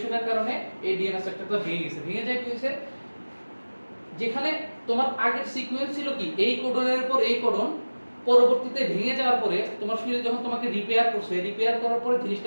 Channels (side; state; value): both; inverted; correlation -1.00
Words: কারণে এই ডিএনএ স্ট্রাকচারটা ভেঙে গেছে। ভেঙে যায় কি হয়েছে, যেখানে তোমার আগের সিকোয়েন্স ছিল কি এই কোডনের পর এই কোডন, পরবর্তীতে ভেঙে যাওয়ার পরে তোমার শরীর যখন তোমাকে রিপেয়ার করছে, রিপেয়ার করার পরে